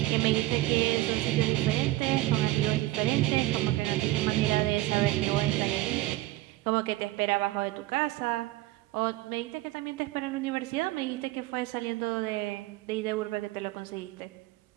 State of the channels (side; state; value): left; quieter; 17.4 dB